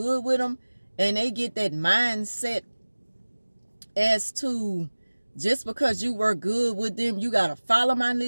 with them, and they get that mindset as to, just because you work good with them, you gotta follow my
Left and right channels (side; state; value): both; inverted; correlation -1.00